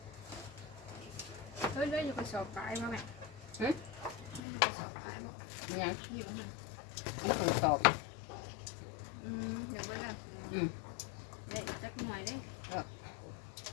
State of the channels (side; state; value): right; drops out; at 4.4 s